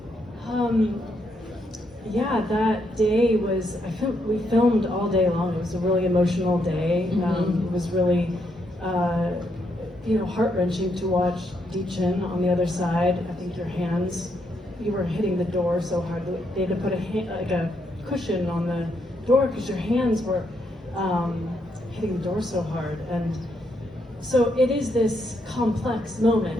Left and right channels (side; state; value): both; normal; correlation 0.77